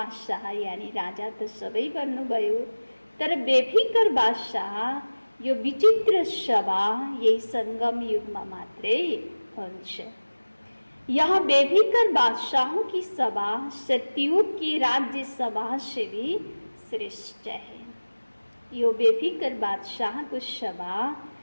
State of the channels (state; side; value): inverted; both; correlation -1.00